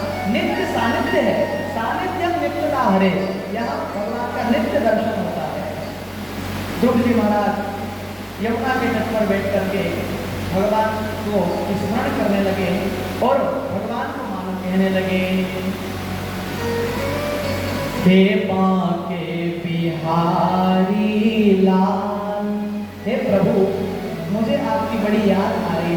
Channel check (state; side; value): identical; both; correlation 1.00